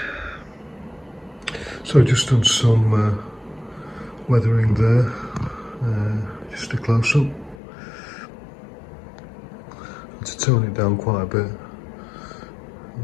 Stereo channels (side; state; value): right; drops out; at 7.6 s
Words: So just done some weathering there, just a close up. Had to tone it down quite a bit.